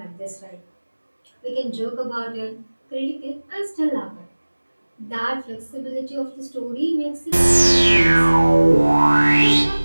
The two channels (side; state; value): both; inverted; correlation -1.00